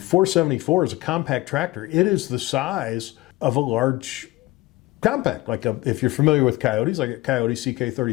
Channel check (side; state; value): right; quieter; 19.4 dB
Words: is a compact tractor. It is the size of a large compact, if you're familiar with Coyotes, like a Coyote